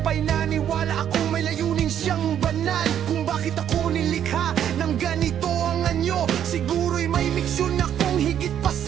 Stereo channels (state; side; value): quieter; left; 9.8 dB